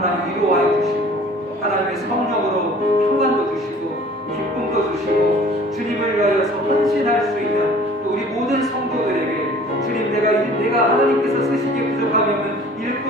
위로하여 주시고 하나님의 성령으로 평안도 주시고 기쁨도 주시고 주님을 위하여서 헌신할 수 있는 또 우리 모든 성도들에게 주님 내가 하나님께서 쓰시기에 부족하면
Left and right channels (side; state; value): both; normal; correlation 0.49